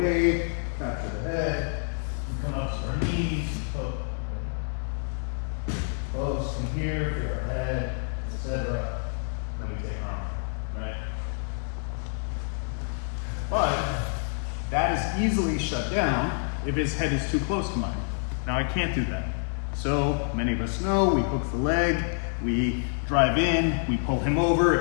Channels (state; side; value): silent; right; 60 dB below the other